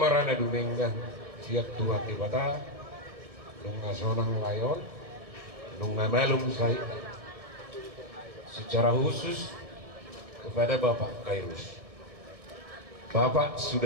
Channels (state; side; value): late; left; 1.6 ms